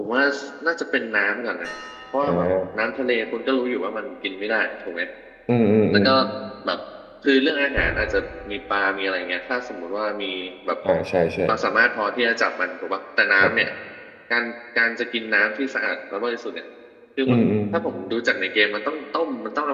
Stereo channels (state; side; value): identical; both; correlation 1.00